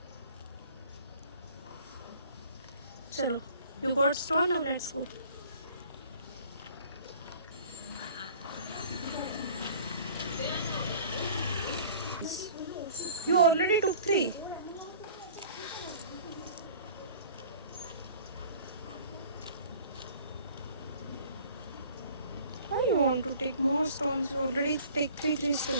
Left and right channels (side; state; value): both; inverted; correlation -0.49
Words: चलो, you got stone, now let's go. You already took 3. Why you want to take more stones? You already take 3